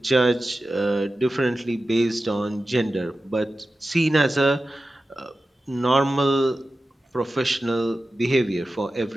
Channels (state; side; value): normal; both; correlation 0.94